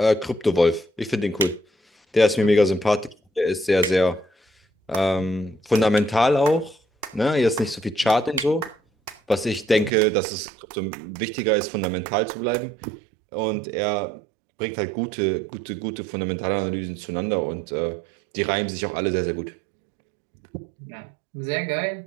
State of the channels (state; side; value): drops out; left; at 9.9 s